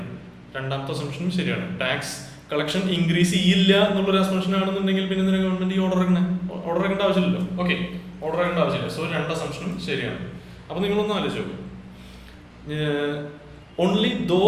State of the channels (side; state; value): both; identical; correlation 1.00